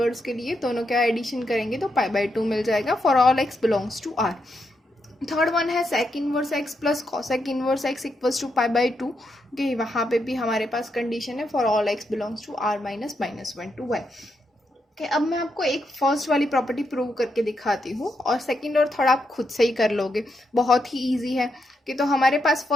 के लिए, दोनों का एडिशन करेंगे तो पाई बाई 2 मिल जाएगा for all x belongs to R. Third one है sec inverse x plus cosec inverse x equals to pi by 2। Okay, वहाँ पे भी हमारे पास कंडीशन है for all x belongs to R minus -1 to 1। कि अब मैं आपको एक फर्स्ट वाली प्रॉपर्टी प्रूव करके दिखाती हूँ और सेकंड और थर्ड आप खुद से ही कर लोगे, बहुत ही इजी है। कि तो हमारे पास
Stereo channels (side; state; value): both; normal; correlation 0.82